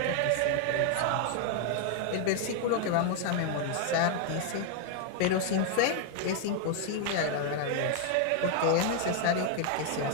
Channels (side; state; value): both; different; correlation 0.00